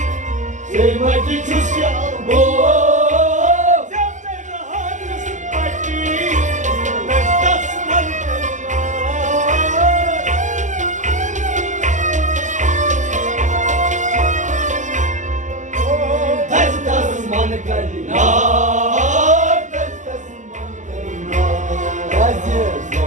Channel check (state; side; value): late; left; 0.36 ms